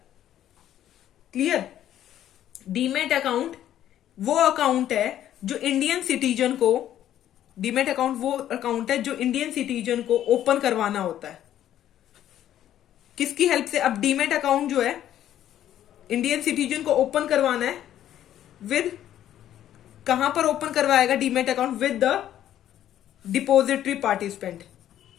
Clear. Demat account वो अकाउंट है जो इंडियन सिटीजन को, डीमेट अकाउंट वो अकाउंट है जो इंडियन सिटीजन को ओपन करवाना होता है। किसकी हेल्प से। अब डीमेट अकाउंट जो है इंडियन सिटीजन को ओपन करवाना है विद, कहां पर ओपन करवाएगा demat account, with the depository participant.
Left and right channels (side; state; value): right; quieter; 11.6 dB